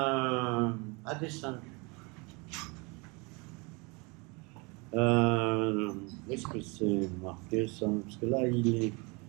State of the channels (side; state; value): left; quieter; 28.7 dB